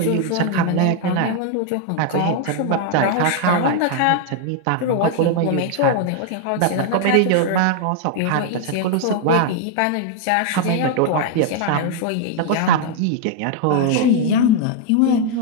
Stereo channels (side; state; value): both; different; correlation 0.00